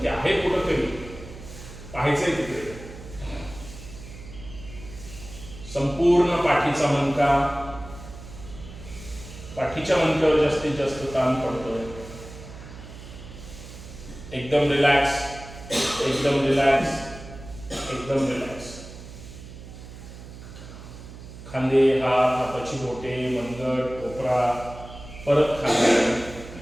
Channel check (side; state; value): right; noise; hum, 14 dB below the sound